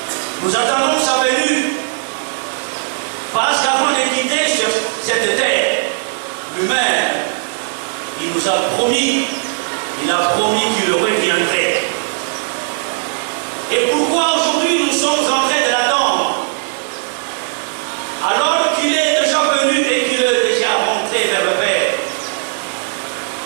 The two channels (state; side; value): silent; left; digital silence